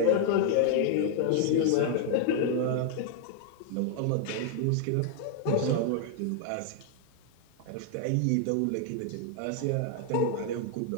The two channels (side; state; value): both; different; correlation 0.00